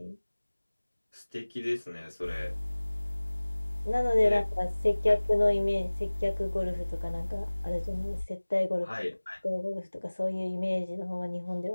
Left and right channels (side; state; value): both; inverted; correlation -1.00